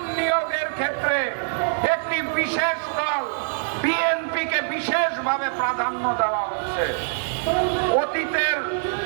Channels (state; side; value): silent; left; 63 dB below the other